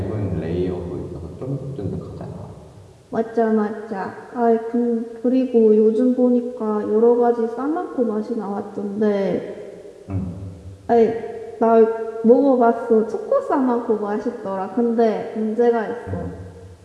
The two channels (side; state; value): both; identical; correlation 1.00